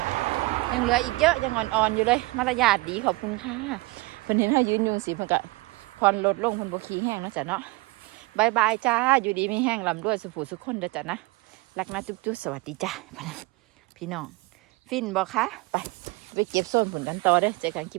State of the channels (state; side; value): quieter; left; 23.3 dB